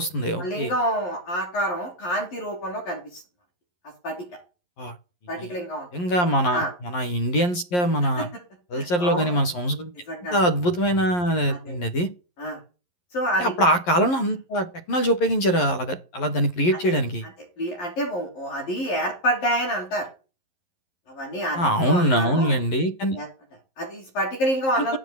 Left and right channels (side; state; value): right; late; 11 ms